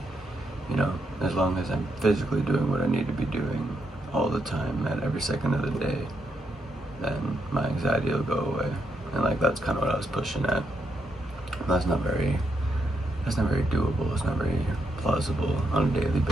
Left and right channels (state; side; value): normal; both; correlation 0.80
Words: as long as I'm physically doing what I need to be doing all the time at every second of the day, then my anxiety will go away. And that's kind of what I was pushing at. That's not very doable. It's not very plausible on a daily